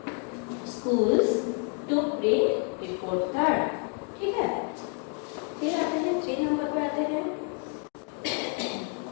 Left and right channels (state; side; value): quieter; right; 39.1 dB